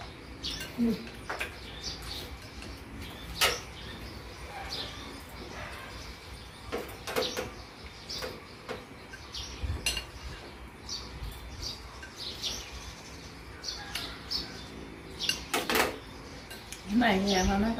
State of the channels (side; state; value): both; identical; correlation 1.00